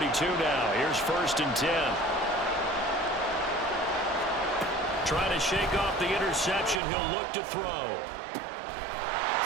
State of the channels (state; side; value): drops out; left; at 6.8 s